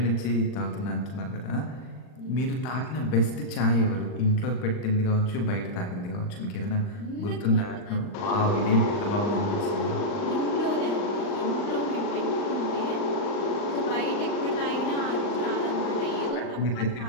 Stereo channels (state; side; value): late; right; 39 ms